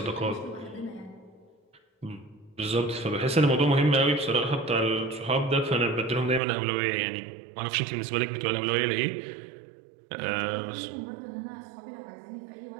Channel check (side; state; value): left; drops out; at 6.4 s